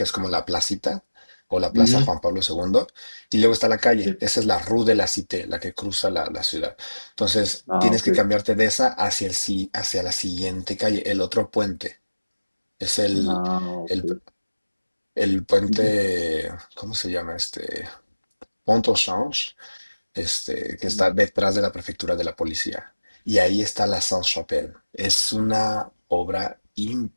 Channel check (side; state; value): both; inverted; correlation -1.00